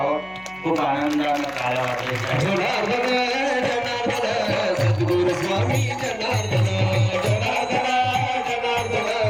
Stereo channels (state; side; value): noise; right; hum, 25 dB below the sound